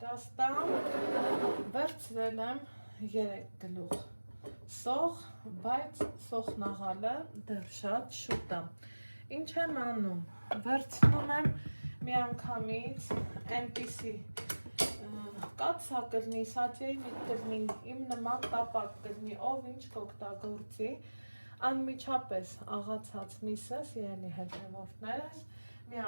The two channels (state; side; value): inverted; both; correlation -1.00